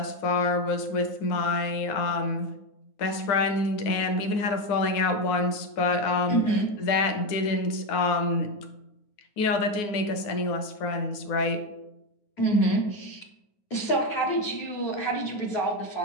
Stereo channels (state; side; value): late; right; 9.6 ms